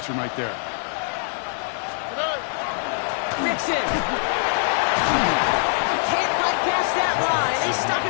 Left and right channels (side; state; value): right; silent; digital silence